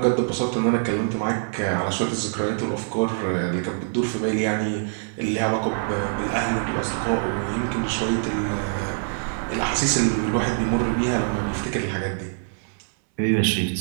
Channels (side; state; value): left; silent; digital silence